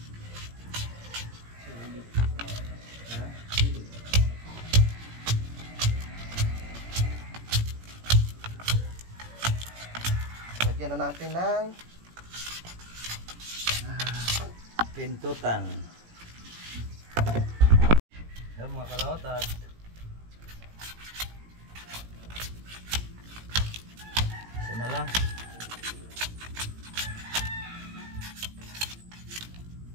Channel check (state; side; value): late; left; 17 ms